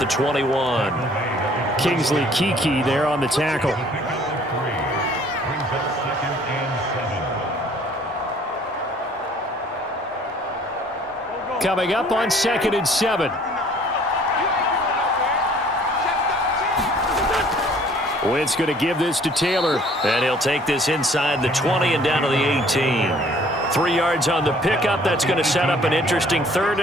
21. Kingsley Keke there on the tackle. Coming up on 2nd and 7. Wentz going to give this to Taylor. And he'll take this inside the 20 and down to the 18. 3 yards on the pickup. That's going to set up an interesting 3rd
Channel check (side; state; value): both; normal; correlation 0.56